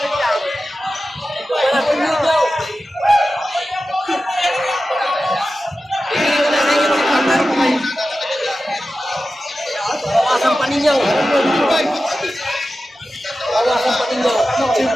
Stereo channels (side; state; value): both; normal; correlation 0.93